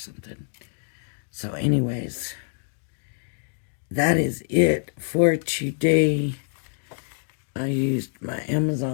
So anyways, that is it for today. I used my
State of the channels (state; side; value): silent; right; digital silence